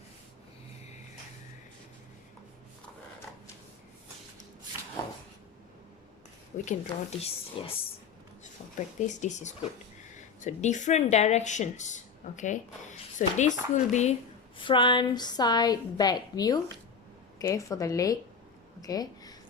we can draw this. Yes, for practice this is good. So different directions. Okay, so this will be front, side, back view. Okay, for the leg. Okay,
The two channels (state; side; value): quieter; right; 5.7 dB